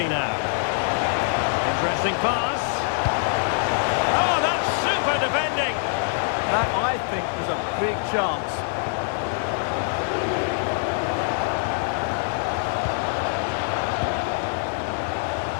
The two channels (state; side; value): silent; right; 62 dB below the other